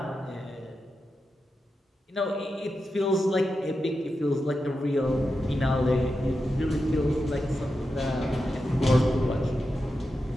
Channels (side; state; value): both; normal; correlation 0.89